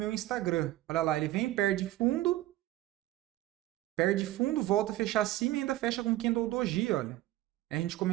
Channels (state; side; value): quieter; left; 15.8 dB